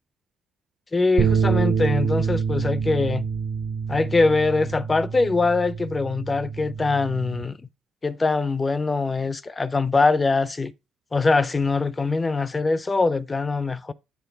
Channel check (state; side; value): normal; both; correlation 0.88